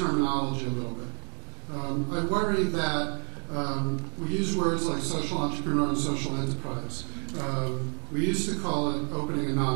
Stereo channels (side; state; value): left; quieter; 39.2 dB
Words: a little bit. I worry that we use words like social entrepreneur and social enterprise. We used to call it opening a